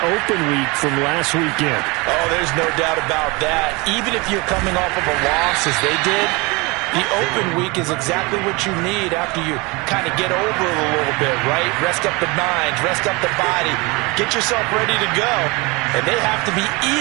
open week from last weekend. Oh, there's no doubt about that. Even if you're coming off of a loss as they did, the open week is exactly what you need after you kind of get over it a little bit, right? Rest up the minds, rest up the body, get yourself ready to go. And they have to be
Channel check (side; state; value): left; quieter; 26.0 dB